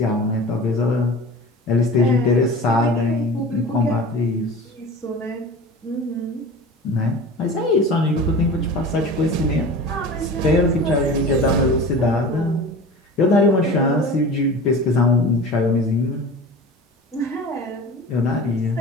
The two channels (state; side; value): normal; both; correlation 0.36